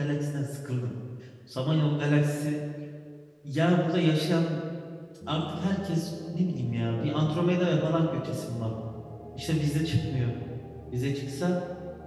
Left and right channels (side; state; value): both; identical; correlation 1.00